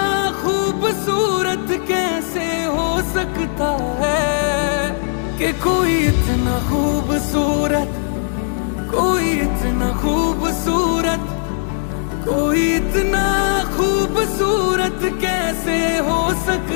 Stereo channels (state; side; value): silent; right; digital silence